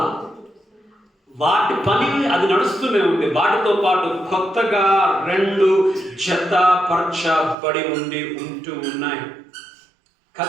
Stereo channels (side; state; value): left; drops out; at 7.6 s